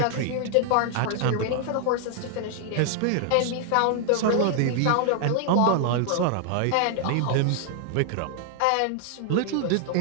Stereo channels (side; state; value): both; different; correlation 0.00